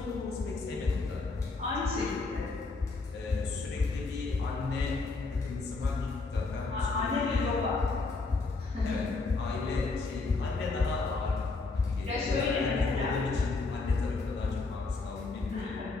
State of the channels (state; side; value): quieter; right; 3.8 dB